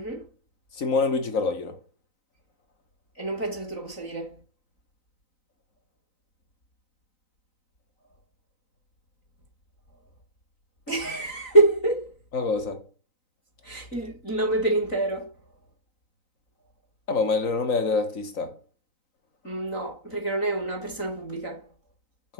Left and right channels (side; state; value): right; late; 3.9 ms